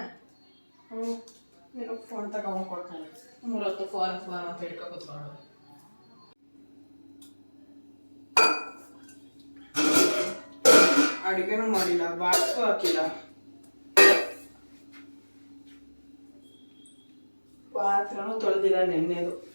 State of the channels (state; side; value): inverted; both; correlation -1.00